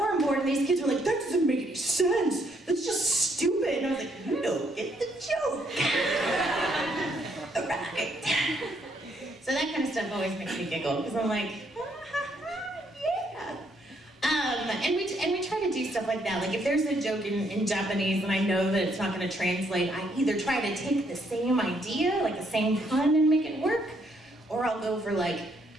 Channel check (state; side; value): normal; both; correlation 0.71